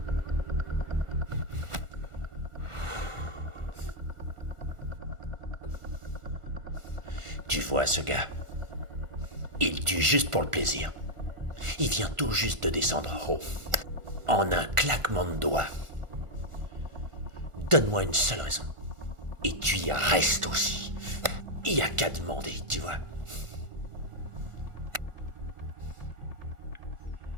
Tu vois ce gars? Il tue juste pour le plaisir. Il vient tout juste de descendre en haut. En un claquement de doigts. Donne-moi une seule raison. Et tu y restes aussi. Il y a qu'à demander, tu vois.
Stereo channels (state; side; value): late; left; 1.4 ms